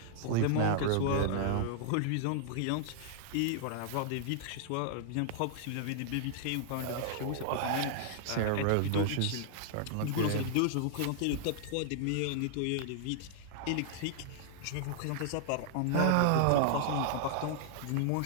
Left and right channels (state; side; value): different; both; correlation -0.01